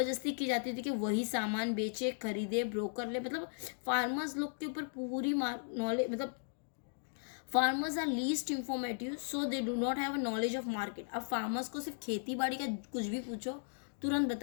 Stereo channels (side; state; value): right; silent; digital silence